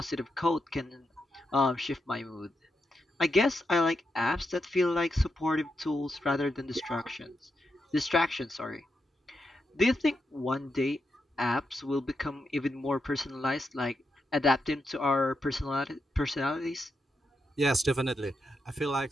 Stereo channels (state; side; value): normal; both; correlation 0.85